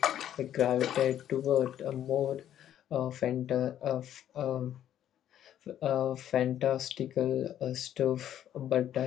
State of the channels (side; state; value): right; quieter; 10.9 dB